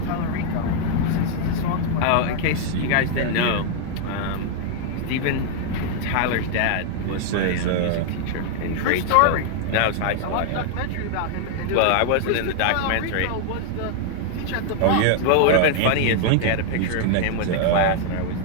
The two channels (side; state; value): both; different; correlation 0.00